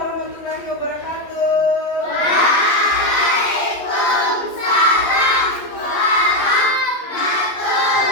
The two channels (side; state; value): right; late; 11 ms